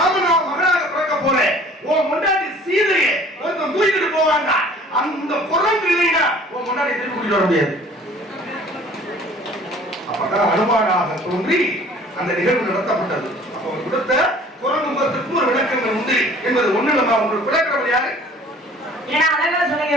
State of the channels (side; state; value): both; normal; correlation 0.51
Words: மகனாக பிறக்க போற உன் முன்னாடி சீதையை ஒருத்தன் தூக்கிட்டு போவாங்க. அந்த குரங்கு இல்லைன்னா உன் முன்னாடி திருப்பி கூட்டிட்டு வர முடியாது. அப்பதான் அனுமானாக தோன்றி அந்த நிகழ்வு நடத்தப்பட்டது. அப்ப அவர் கொடுத்த குரங்கு முகத்துக்கு ஒரு விளக்கங்கள் உண்டு என்பது ஒண்ணு. நம்ம உங்களுக்கு விளக்குறது யாரு? ஏன்னா அழகா